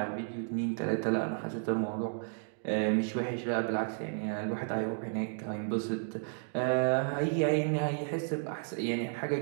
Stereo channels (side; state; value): left; silent; digital silence